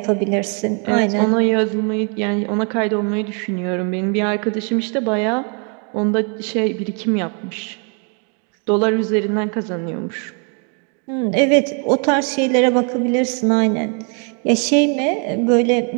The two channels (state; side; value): quieter; left; 38.5 dB